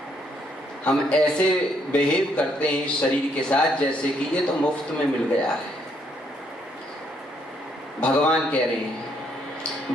हम ऐसे बिहेव करते हैं इस शरीर के साथ जैसे कि ये तो मुफ्त में मिल गया है। भगवान कह रहे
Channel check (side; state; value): both; normal; correlation 0.71